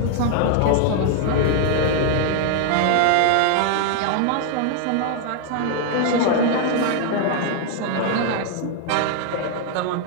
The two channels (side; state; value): both; different; correlation 0.00